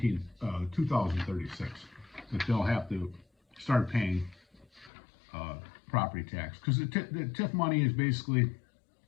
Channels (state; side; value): drops out; right; at 4.9 s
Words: 2036 that they'll have to start paying property tax, because the TIF money is basically